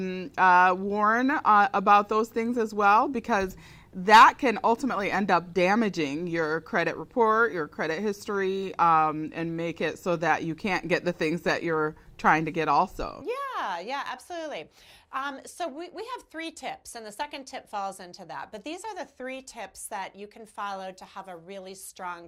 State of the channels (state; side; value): identical; both; correlation 1.00